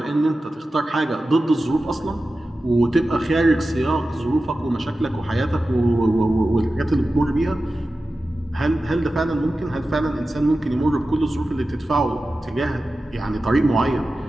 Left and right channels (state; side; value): normal; both; correlation 0.94